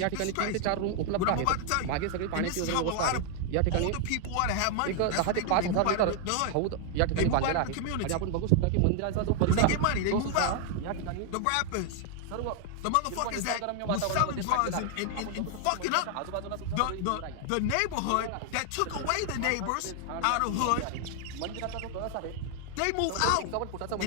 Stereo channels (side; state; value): both; different; correlation 0.00